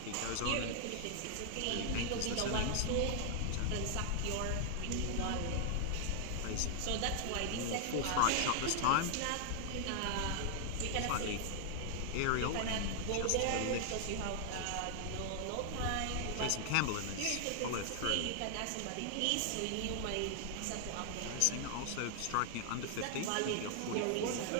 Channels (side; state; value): both; different; correlation 0.00